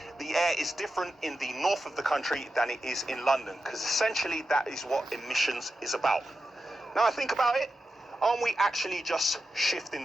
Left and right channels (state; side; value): normal; both; correlation 0.90